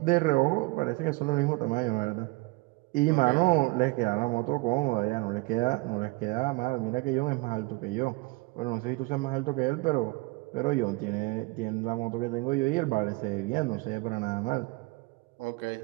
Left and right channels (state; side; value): quieter; left; 23.8 dB